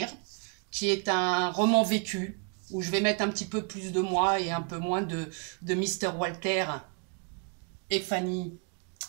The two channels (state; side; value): quieter; left; 38.8 dB